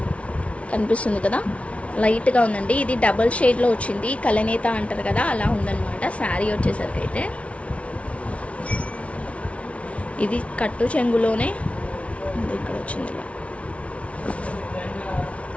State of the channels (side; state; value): right; late; 0.063 ms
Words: కనిపిస్తుంది కదా, లైట్గా ఉందండి. ఇది డబల్ షేడ్లో వచ్చింది. కలనేత అంటారు కదా, అలా ఉందన్నమాట. శారీ వచ్చేసరికి అయితే ఇది కట్టు చెంగులోనే ఇక్కడ వచ్చింది ఇలా.